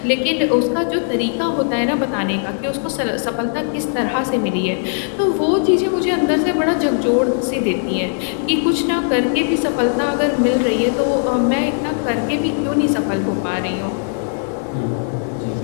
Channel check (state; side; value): silent; right; digital silence